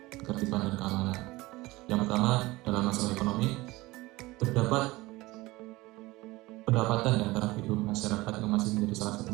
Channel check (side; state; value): left; quieter; 20.4 dB